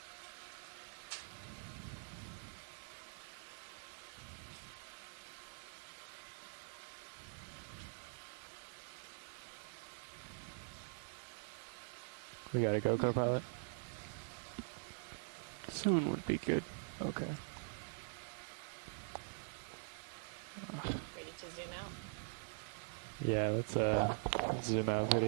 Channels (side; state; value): left; silent; digital silence